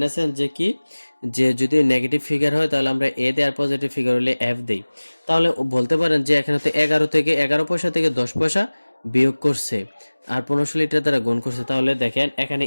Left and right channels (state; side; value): inverted; both; correlation -1.00